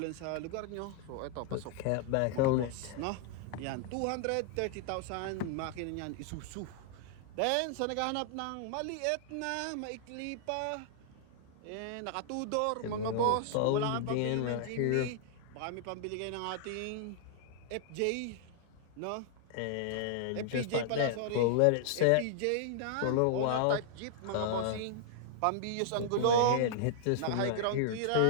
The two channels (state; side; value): different; both; correlation -0.01